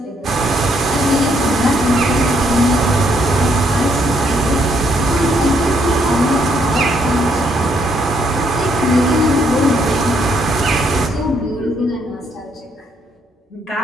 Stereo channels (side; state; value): both; normal; correlation 0.72